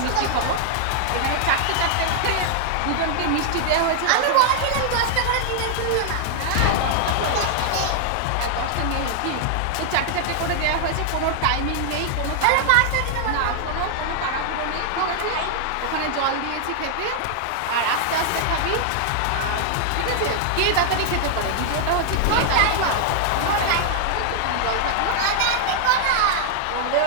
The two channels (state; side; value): different; both; correlation -0.01